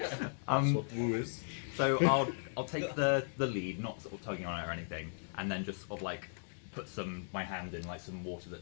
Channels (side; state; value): right; silent; digital silence